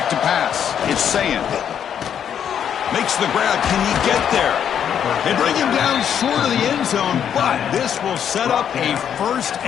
to pass. It's Sayin. Makes the grab. Can he get there? They bring him down short of the end zone, but this will set up a 1st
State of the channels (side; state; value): right; quieter; 8.8 dB